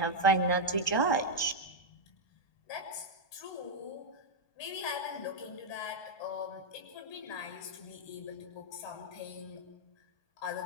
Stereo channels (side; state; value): right; late; 1.2 ms